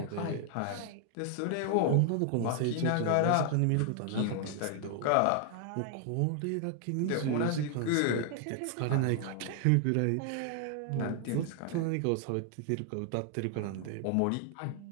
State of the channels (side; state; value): both; different; correlation 0.00